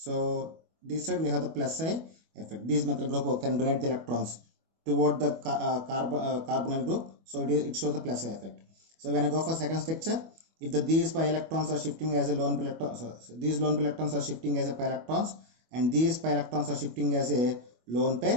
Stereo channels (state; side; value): late; left; 25 ms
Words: this side we have the plus psi effect. These methyl group can donate the electrons toward the carbonyl group, so it shows the plus psi effect. So when I go for second structure, if these pi electrons are shifting as a lone pi electrons, these lone pi electrons are shifting as a pi electrons, and these pi electrons are shifting as a lone